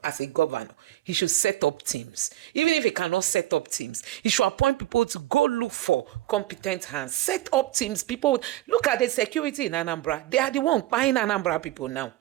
as a governor, he should set up teams. Even if he cannot set up teams, he should appoint people to go look for competent hands. Set up teams. People, look at the security in Anambra. They are the one buying Anambra people now.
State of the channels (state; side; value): quieter; left; 15.3 dB